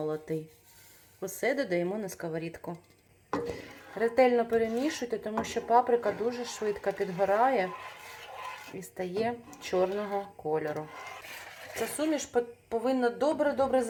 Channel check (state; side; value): identical; both; correlation 1.00